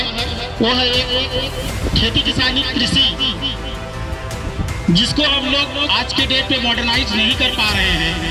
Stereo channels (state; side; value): identical; both; correlation 1.00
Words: वो है एक खेती किसानी कृषि, जिसको हम लोग आज के डेट पे मॉडर्नाइज नहीं कर पा रहे हैं।